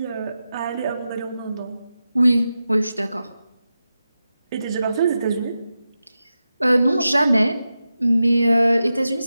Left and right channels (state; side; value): inverted; both; correlation -0.91